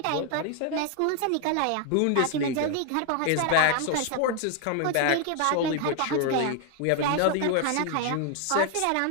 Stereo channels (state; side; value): different; both; correlation 0.00